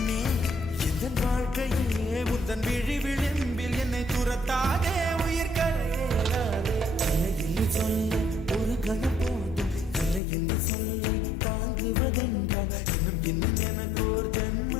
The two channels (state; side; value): drops out; right; at 10.2 s